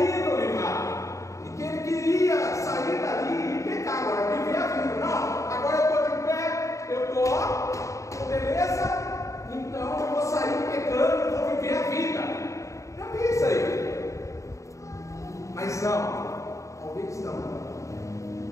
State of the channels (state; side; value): late; right; 0.15 ms